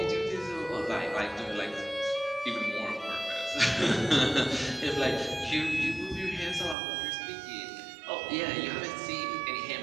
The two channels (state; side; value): drops out; left; at 6.8 s